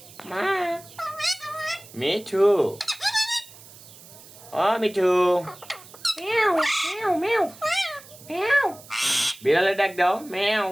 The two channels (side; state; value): right; noise; hiss, 20 dB below the sound